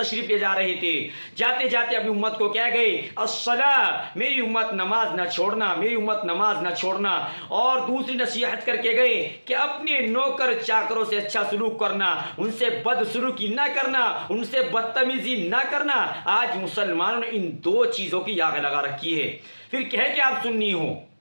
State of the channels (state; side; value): inverted; both; correlation -1.00